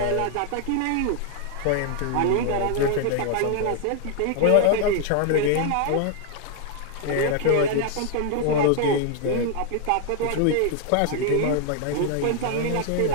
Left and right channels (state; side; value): different; both; correlation 0.00